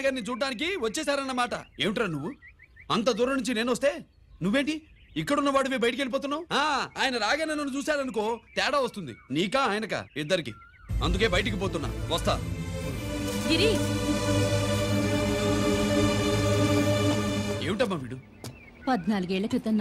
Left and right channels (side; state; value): both; identical; correlation 1.00